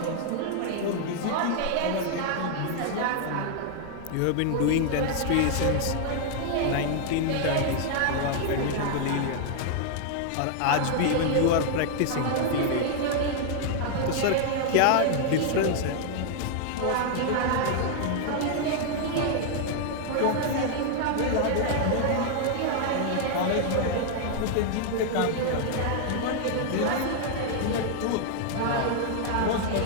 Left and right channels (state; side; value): different; both; correlation 0.00